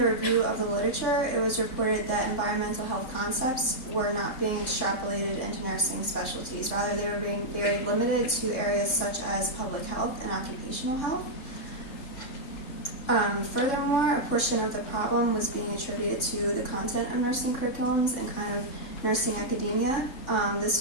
review of the literature, it was reported that environmental health concepts were not being extrapolated into nursing specialties. Rather, they were being very limited to areas such as public health and occupational health. Furthermore, a portion of the problem was being attributed to the content of nursing curriculums and kind of nursing academia. This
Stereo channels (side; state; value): right; late; 3.7 ms